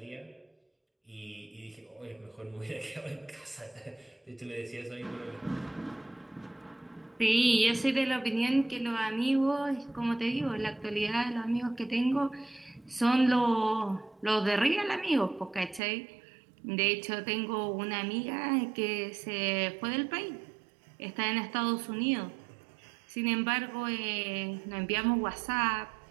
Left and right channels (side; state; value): left; drops out; at 15.8 s